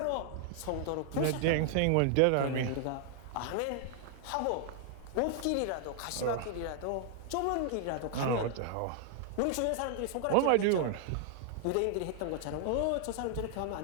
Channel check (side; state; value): both; different; correlation 0.00